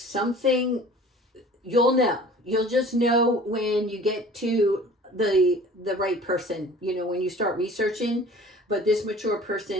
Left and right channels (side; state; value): both; normal; correlation 0.46